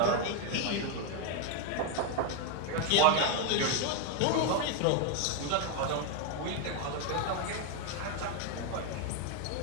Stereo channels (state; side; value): different; both; correlation 0.01